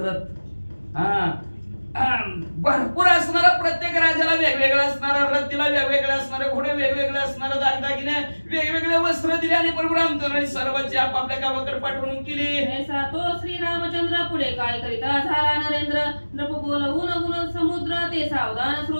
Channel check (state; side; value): inverted; both; correlation -1.00